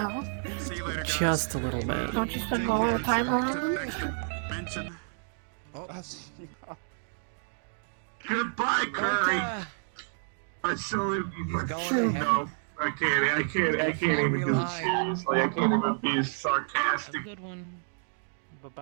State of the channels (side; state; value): left; silent; 58 dB below the other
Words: See you later, guys. Just a little bit. Don't you spend all the time around To the him? next dimension. Goodbye, Curry. I salute you. No, I can't even do it seriously. I can't even be sarcastic. Good one.